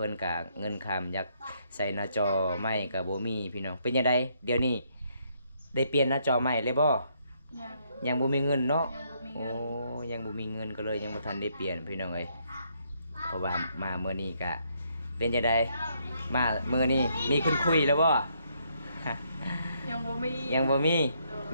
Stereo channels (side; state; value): both; inverted; correlation -0.73